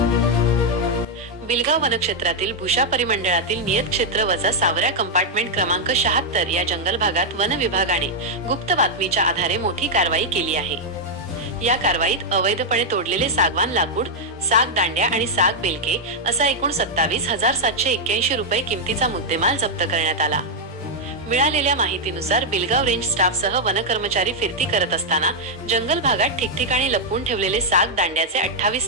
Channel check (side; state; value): both; normal; correlation -0.02